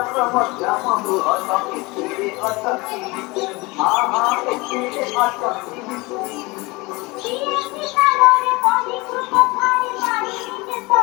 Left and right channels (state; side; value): quieter; right; 24.3 dB